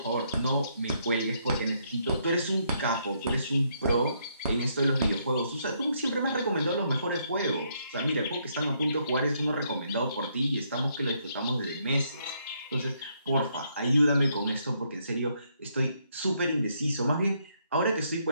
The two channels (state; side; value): inverted; both; correlation -0.73